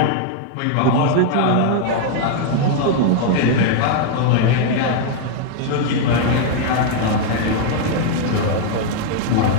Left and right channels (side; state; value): both; different; correlation 0.00